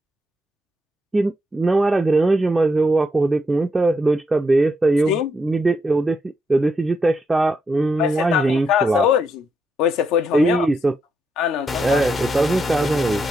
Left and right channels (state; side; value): normal; both; correlation 0.80